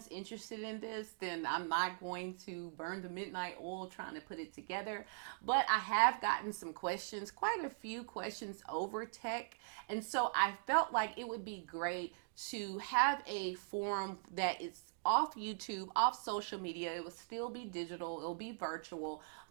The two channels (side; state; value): left; silent; digital silence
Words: interested in this, then I'm not going to burn the midnight oil trying to put it together. But I have gotten some questions, quite a few questions over tech. And so I felt like it would be great to have a forum that is off YouTube, off social media. It will still be digital, it'll be virtual,